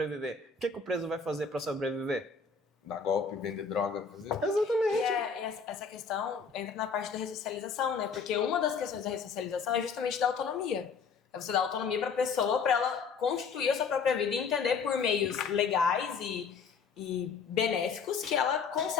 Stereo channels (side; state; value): right; quieter; 5.5 dB